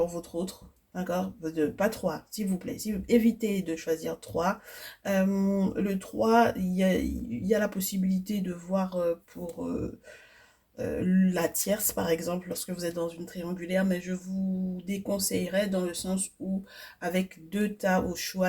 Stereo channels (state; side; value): identical; both; correlation 1.00